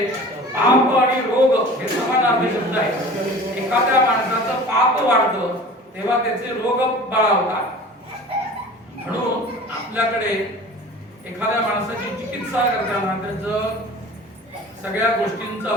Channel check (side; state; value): both; normal; correlation 0.41